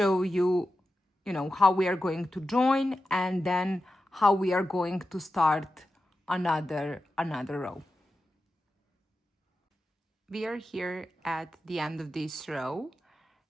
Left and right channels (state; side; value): normal; both; correlation 0.91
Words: you, how we are going to join, and then how we are going to start another row. We are here at the end of this row,